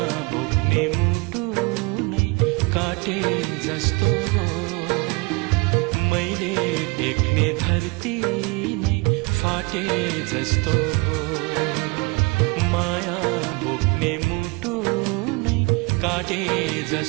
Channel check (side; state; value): left; quieter; 27.2 dB